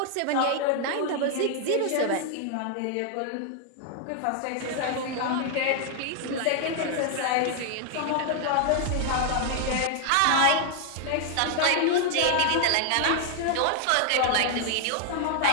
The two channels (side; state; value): both; different; correlation 0.00